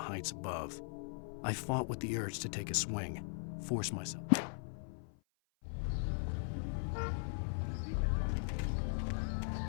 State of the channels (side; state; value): right; silent; 52 dB below the other